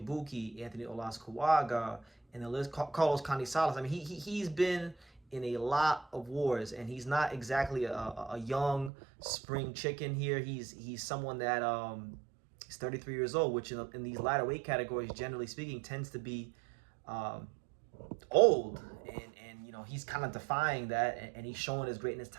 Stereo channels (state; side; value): drops out; left; at 8.9 s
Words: Ibuki, Anthony Olas-Kuwaga, and the list, Carlos Canizales. I mean, he's been in a lot of wars, and he's not exactly a young spring chicken here. He's someone that is 33 years old, which in these lighter weight categories, generally speaking, tends to be old, and he's kind of defying that, and he's showing his greatness